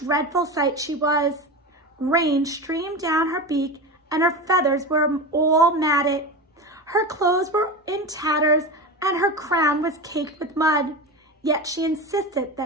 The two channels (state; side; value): normal; both; correlation 0.24